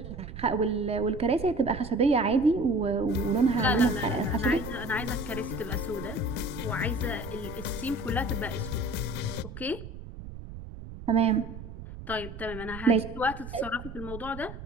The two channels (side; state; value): right; noise; rumble, 12 dB below the sound